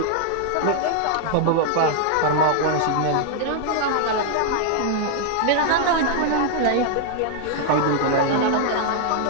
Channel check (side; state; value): both; different; correlation 0.00